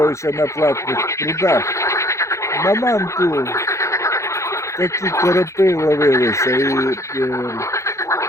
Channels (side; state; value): right; late; 0.14 ms